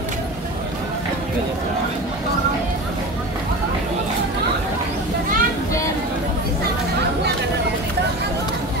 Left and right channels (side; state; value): both; normal; correlation 0.30